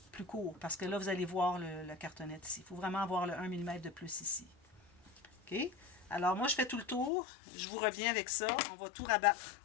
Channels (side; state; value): right; drops out; at 7.1 s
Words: plus court, parce que là, vous allez voir la cartonnette ici. Il faut vraiment avoir le 1 mm de plus ici. OK? Alors, moi, je fais tout le tour. Je vous reviens avec ça. On va tout rabattre